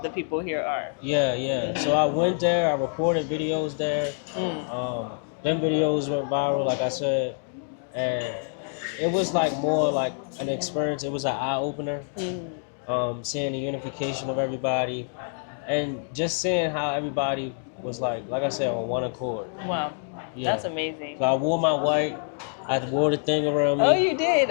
the people here are. Yeah, yeah. So I went there. I recorded videos there. Mm. Them videos went viral, like I said, and it was like more like an experience. It was an eye opener. Mm. Seeing the unification of everybody, and just seeing how everybody was like I said, on one accord. Wow. Yeah. That's amazing. So I wore my white. I wore the thing around me. Oh, you did?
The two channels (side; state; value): right; silent; digital silence